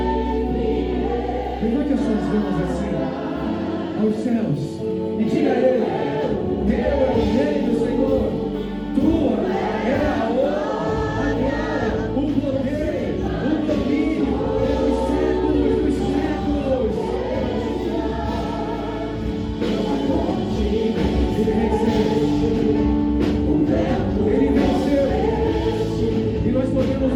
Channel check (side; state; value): both; identical; correlation 1.00